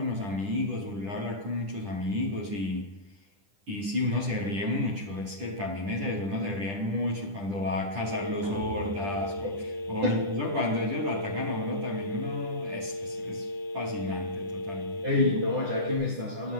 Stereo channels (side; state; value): left; late; 10 ms